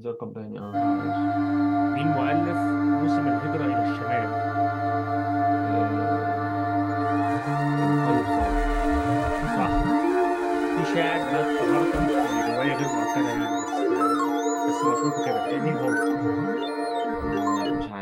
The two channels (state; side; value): identical; both; correlation 1.00